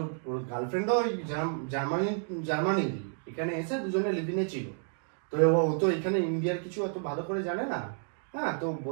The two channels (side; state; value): left; silent; 57 dB below the other